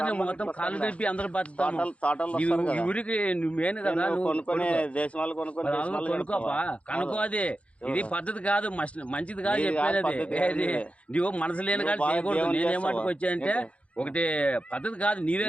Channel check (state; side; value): late; right; 0.063 ms